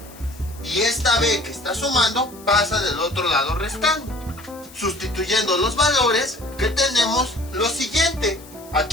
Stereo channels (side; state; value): left; noise; hiss, 21 dB below the sound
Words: y esta B que está sumando pasa del otro lado restando. Sustituyendo los valores, que tenemos lo siguiente.